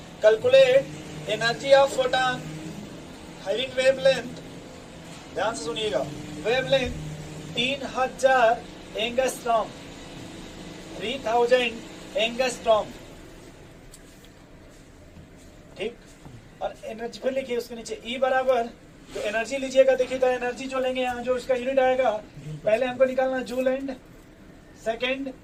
calculate energy of photon having wavelength, ध्यान से सुनिएगा, वेवलेंथ 3000 एंगस्ट्रॉम, 3000 एंगस्ट्रॉम, ठीक। और एनर्जी फिर लिखिए उसके नीचे E बराबर, तो एनर्जी लीजिएगा, देखिए तो एनर्जी जो लेंगे यहाँ जो उसका यूनिट आएगा, पहले हमको निकालना जूल एंड सेकंड,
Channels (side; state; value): both; identical; correlation 1.00